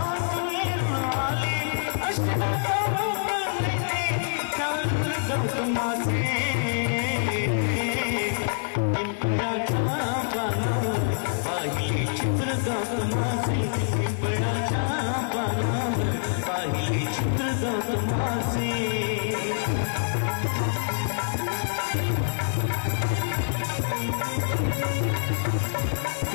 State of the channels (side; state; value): right; silent; digital silence